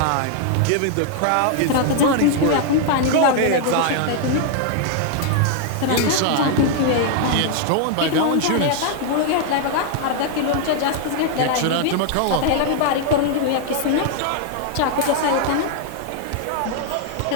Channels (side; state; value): both; different; correlation 0.00